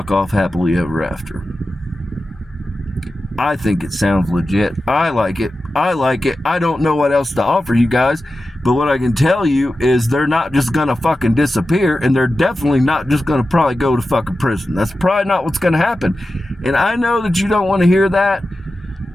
off happily ever after. I think it sounds legit. I like it. I don't know what else to offer you guys, but what I can tell you is they're not just gonna fucking disappear, and they're definitely not just gonna probably go to fucking prison. That's probably not what's gonna happen. And I know that you don't want to hear that,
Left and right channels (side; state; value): both; normal; correlation 0.93